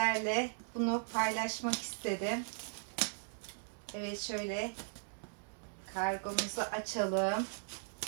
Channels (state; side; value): silent; left; digital silence